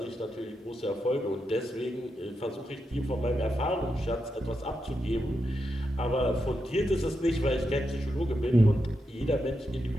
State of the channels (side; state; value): both; normal; correlation 0.86